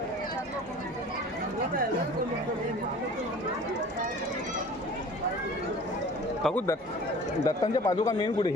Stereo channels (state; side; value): normal; both; correlation 0.44